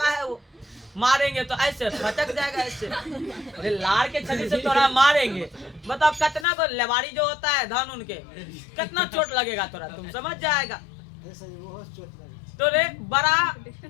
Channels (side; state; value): right; drops out; at 6.5 s